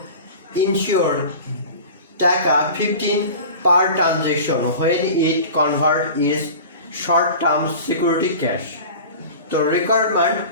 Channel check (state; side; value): inverted; both; correlation -0.37